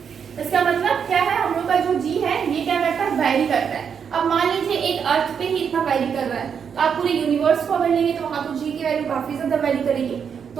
इसका मतलब क्या है, हम लोग का जो जी है ये क्या करता है, वैरी करता है। अब मान लीजिए एक अर्थ पे ही इतना वैरी कर रहा है, तो आप पूरे यूनिवर्स को अगर लेंगे तो वहां तो जी की वैल्यू काफी ज्यादा वैरी करेगी।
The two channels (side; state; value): left; quieter; 7.1 dB